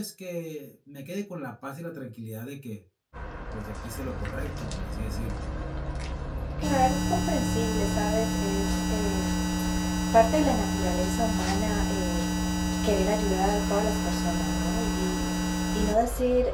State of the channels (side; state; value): both; identical; correlation 1.00